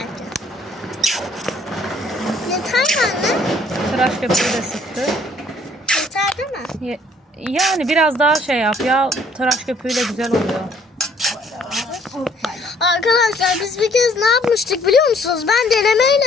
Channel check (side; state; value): both; normal; correlation 0.61